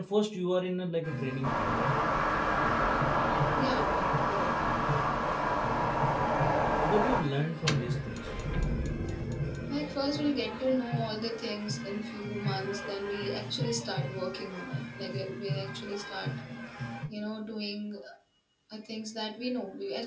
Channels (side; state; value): both; identical; correlation 1.00